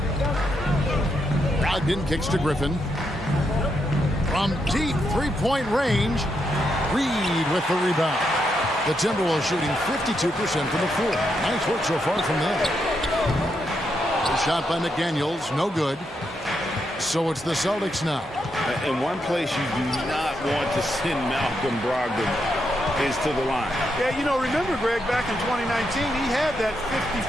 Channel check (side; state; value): both; normal; correlation 0.81